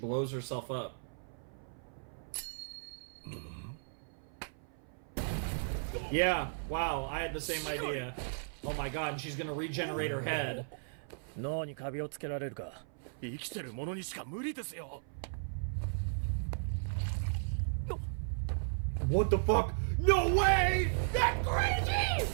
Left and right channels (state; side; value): silent; left; 54 dB below the other